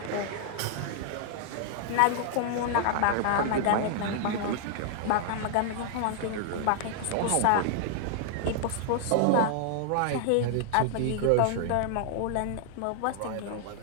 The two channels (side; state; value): both; different; correlation 0.00